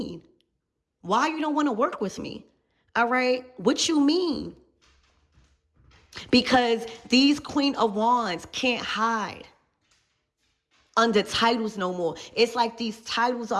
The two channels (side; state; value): both; identical; correlation 1.00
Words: Why you don't want to work with me? All right. What you mean? Because these Queen of Wands can't hide under titles no more. It's like these titles